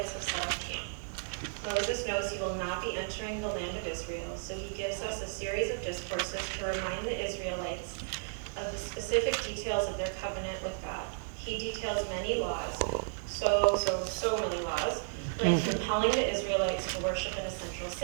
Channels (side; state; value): left; silent; digital silence